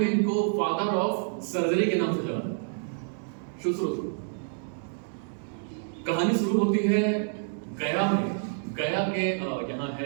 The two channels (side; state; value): left; silent; digital silence